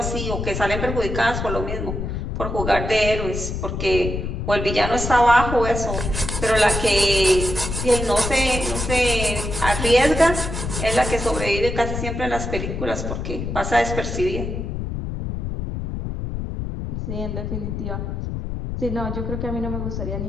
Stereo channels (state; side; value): noise; left; rumble, 4 dB below the sound